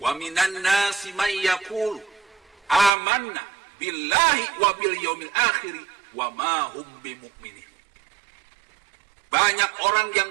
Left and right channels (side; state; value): left; drops out; at 2.9 s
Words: minan nasi may yaqulu amanna billahi wa bil yaumil akhir wa ma hum bimu'minin. Banyak orang yang